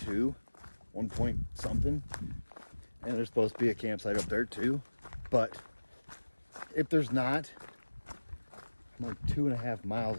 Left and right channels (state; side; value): inverted; both; correlation -1.00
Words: 1 point something, and there's supposed to be a campsite up there too, but if there's not, I'm like 2.5